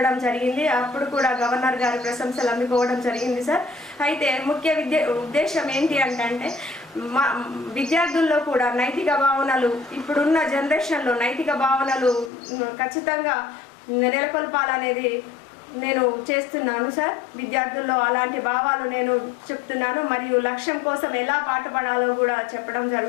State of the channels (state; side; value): drops out; right; at 12.3 s